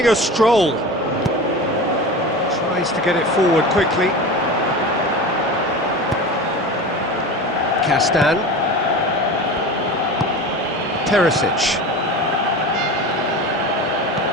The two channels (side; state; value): both; normal; correlation 0.31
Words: a stroll. Tries to get it forward quickly. Castan. Perisic.